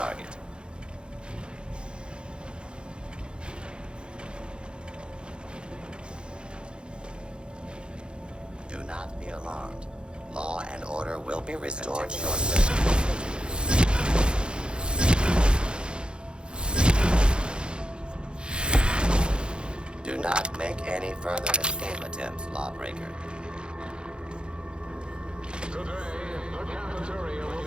Do not be alarmed. Law and order will be restored shortly. Do not make any further escape attempts, lawbreaker. Today, the cafeteria will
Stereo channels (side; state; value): left; late; 0.052 ms